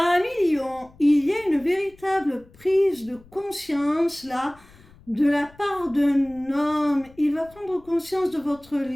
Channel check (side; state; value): left; noise; rumble, 26 dB below the sound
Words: lions, il y a une véritable prise de conscience là, de la part d'un homme. Il va prendre conscience de votre